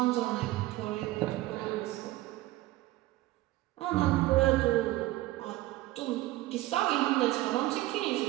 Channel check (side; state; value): left; quieter; 17.4 dB